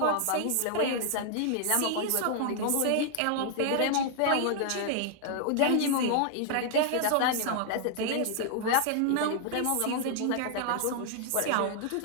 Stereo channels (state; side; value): different; both; correlation -0.01